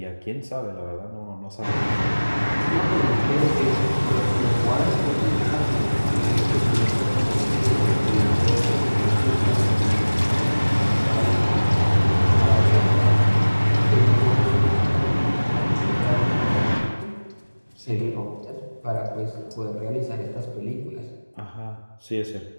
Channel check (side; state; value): both; inverted; correlation -1.00